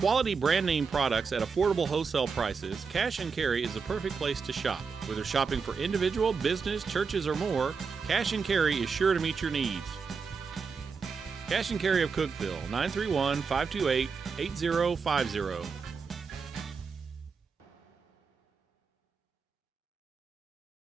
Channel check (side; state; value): left; quieter; 5.4 dB